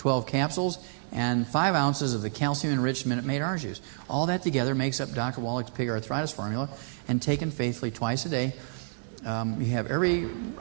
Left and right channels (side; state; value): left; silent; 59 dB below the other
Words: capsules, and 5 ounces of the calcium-enriched Minute Maid orange juice. All that together makes up Dr. Wallach's pig arthritis formula, and taken faithfully twice a day, you have every